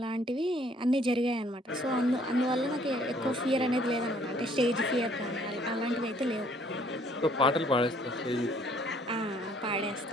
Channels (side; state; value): both; normal; correlation 0.62